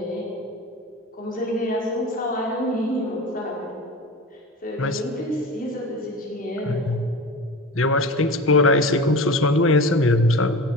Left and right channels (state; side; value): normal; both; correlation 0.31